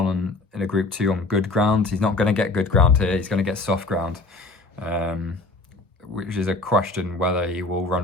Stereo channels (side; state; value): right; quieter; 3.3 dB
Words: in a Group 2 on good ground. He's not going to get good ground here. He's going to get soft ground, which is a question whether he will